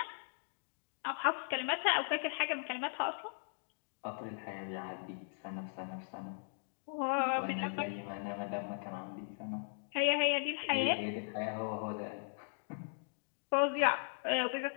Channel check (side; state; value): right; silent; digital silence